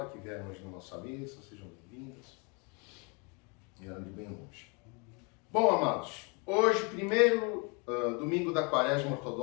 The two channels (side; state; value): right; quieter; 32.5 dB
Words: que vieram hoje na nossa missa. Sejam bem-vindas. Vieram de bem longe. Bom, amados, hoje, primeiro domingo da Quaresma